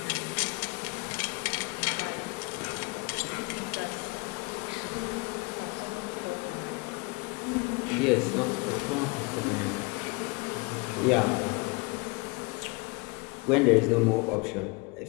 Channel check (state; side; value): quieter; right; 28.0 dB